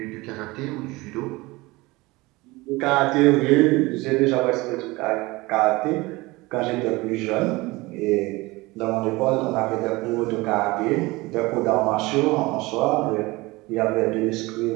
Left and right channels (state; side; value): quieter; left; 22.0 dB